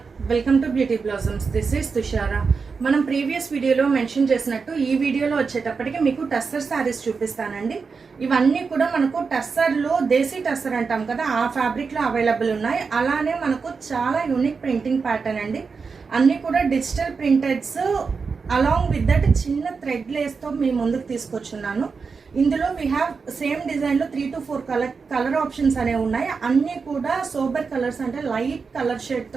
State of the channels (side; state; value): left; quieter; 5.1 dB